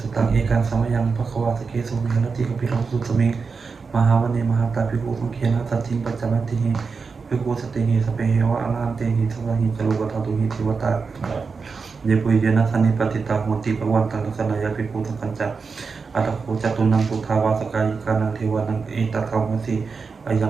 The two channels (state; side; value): quieter; left; 5.0 dB